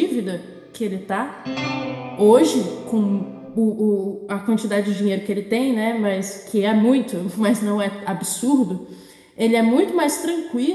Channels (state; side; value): identical; both; correlation 1.00